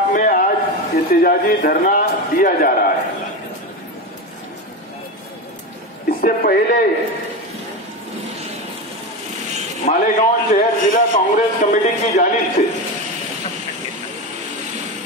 में आज एहतजाजी धरना दिया जा रहा है। इससे पहले मालेगांव शहर जिला कांग्रेस कमेटी की जानिब से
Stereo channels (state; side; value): normal; both; correlation 0.19